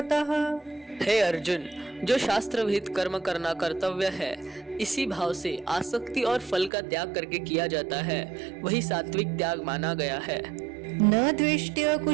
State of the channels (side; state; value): left; drops out; at 6.7 s